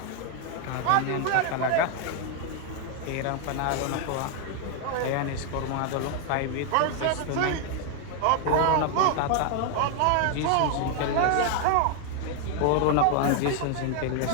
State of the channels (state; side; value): different; both; correlation 0.00